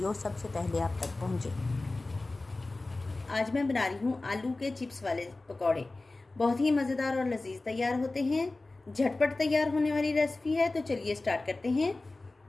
सबसे पहले आप तक पहुंचे। आज मैं बना रही हूँ आलू के चिप्स वाले पकौड़े। बहुत ही मज़ेदार और लजीज तैयार होते हैं। झटपट तैयार होने वाली रेसिपी है, तो चलिए स्टार्ट करते हैं।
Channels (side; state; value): right; quieter; 3.1 dB